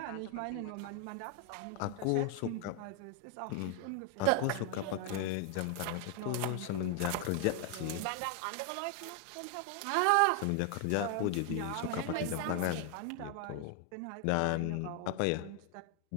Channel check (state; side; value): different; both; correlation 0.00